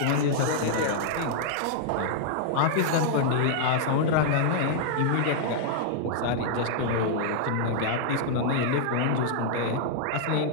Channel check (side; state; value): both; different; correlation -0.01